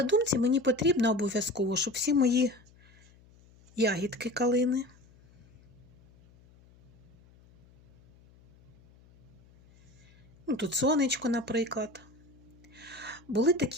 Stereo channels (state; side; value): noise; left; hum, 27 dB below the sound